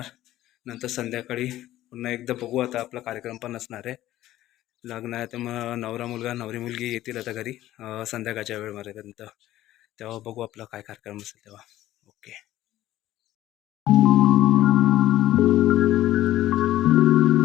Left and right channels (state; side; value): quieter; right; 14.5 dB